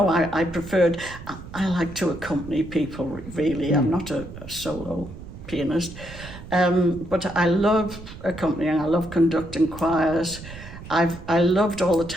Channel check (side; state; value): right; noise; rumble, 14 dB below the sound